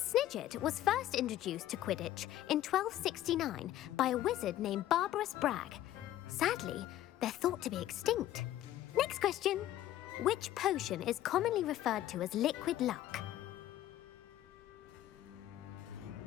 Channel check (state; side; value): quieter; right; 13.4 dB